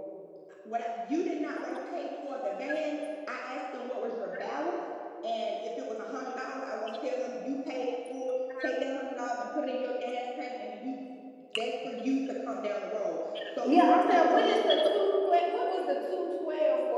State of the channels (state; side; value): identical; both; correlation 1.00